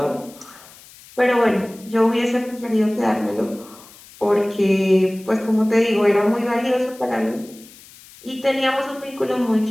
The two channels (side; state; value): left; noise; hiss, 22 dB below the sound